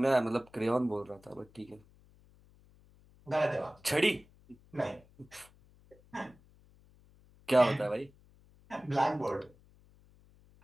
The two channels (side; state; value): left; noise; hum, 28 dB below the sound